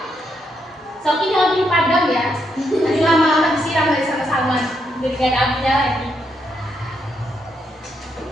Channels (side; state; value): both; normal; correlation 0.78